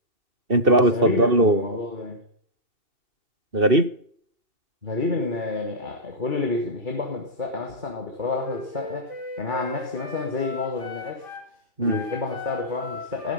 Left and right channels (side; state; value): left; late; 2.7 ms